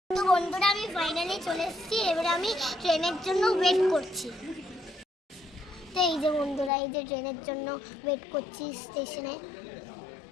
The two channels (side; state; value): right; drops out; at 6.7 s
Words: তো বন্ধুরা আমি ফাইনালি চলে এসেছি, এবারে আমি ট্রেনের জন্য ওয়েট করছি। তো এই যে বন্ধুরা, এই যে ট্রেনের জন্য ওয়েট করছি স্টেশনে।